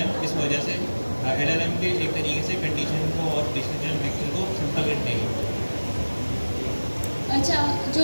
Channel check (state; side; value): inverted; both; correlation -1.00